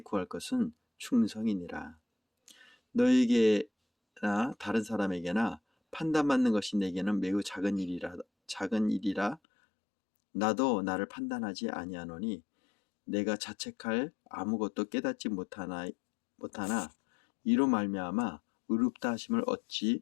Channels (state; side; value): drops out; right; at 9.4 s